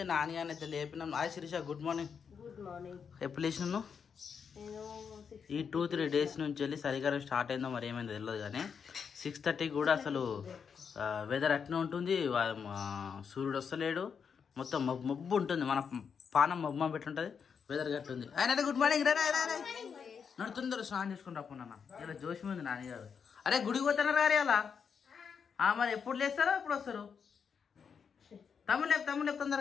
నాని అని అయితే లేపినాం. Hi Sirisha, good morning. ఎప్పుడు లేచినాను? ఈ 2-3 డేస్ నుంచి వెళ్ళి చలికాలం స్టార్ట్ అయిందో మరి ఏమైందో తెలియదు కానీ 6:30 కూడా అసలు వెదర్ అట్నే ఉంటుంది. సూర్యుడు వస్తలేడు, మొత్తం మబ్బు ఉంటుంది. మన పానం మబ్బు పెట్టుంటుంది, వెదర్ గట్టుంది. ఆయన గుడ్ మార్నింగ్. నడుతుందరు స్నానం చేసుకుని రాకున్నా. ఇలా జోషి ఉంది నాన్నగారు. అరే గుడికి పోతున్నారు గారు అలా. మరి ఎప్పుడు లేస్తారో ఎప్పుడు వస్తారు? తమ్ముడు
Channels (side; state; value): right; quieter; 6.5 dB